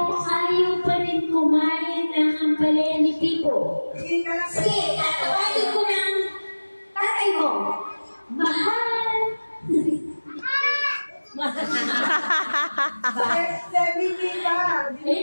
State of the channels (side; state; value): both; inverted; correlation -1.00